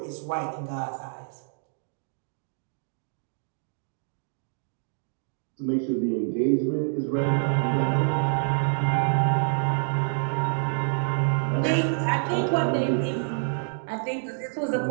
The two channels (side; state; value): left; silent; digital silence